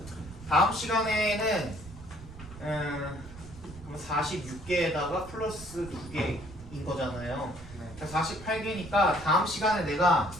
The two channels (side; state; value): right; noise; rumble, 16 dB below the sound